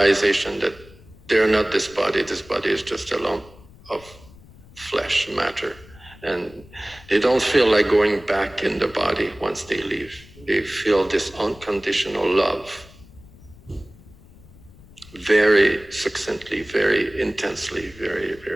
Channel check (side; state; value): left; noise; rumble, 23 dB below the sound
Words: that they're not this body is just a lump of flesh, matter. And they don't feel like going back in the body once they leave. They feel this unconditional love very succinctly, very intensely, very,